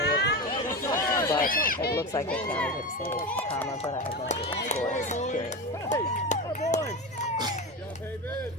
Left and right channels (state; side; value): normal; both; correlation 0.22